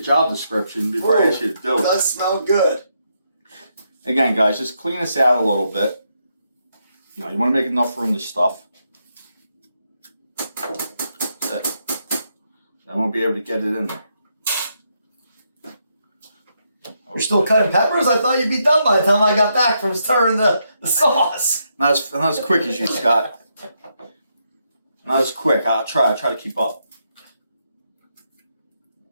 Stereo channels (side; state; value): both; inverted; correlation -0.79